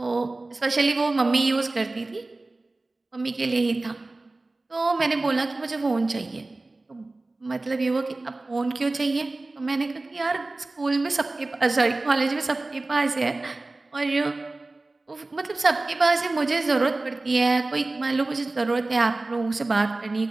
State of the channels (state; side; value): quieter; left; 3.1 dB